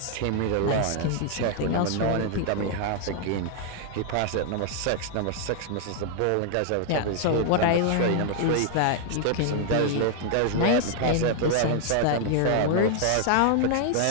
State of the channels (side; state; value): both; different; correlation 0.00